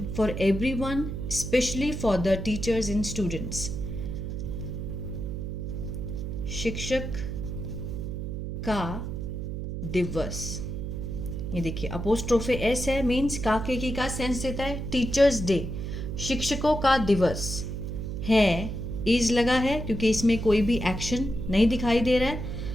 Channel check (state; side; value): noise; right; hum, 5 dB below the sound